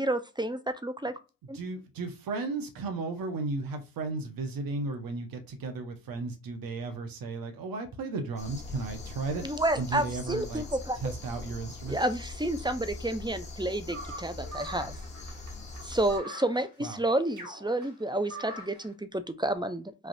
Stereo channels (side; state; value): both; normal; correlation 0.49